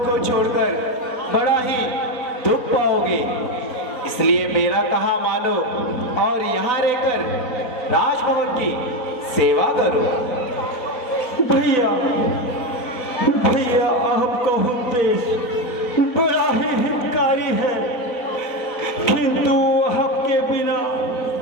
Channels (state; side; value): late; right; 4.0 ms